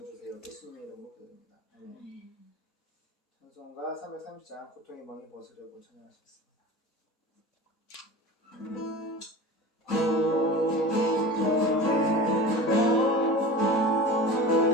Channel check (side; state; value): both; normal; correlation 0.33